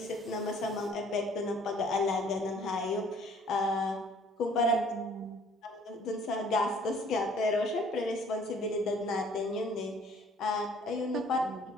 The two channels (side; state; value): both; normal; correlation 0.56